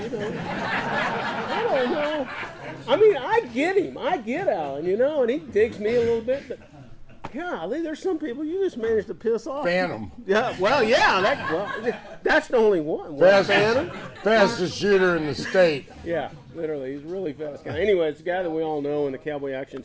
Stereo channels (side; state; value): both; identical; correlation 1.00